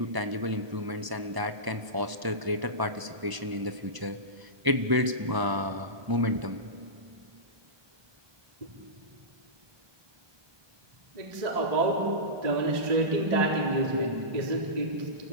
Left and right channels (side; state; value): left; late; 1.0 ms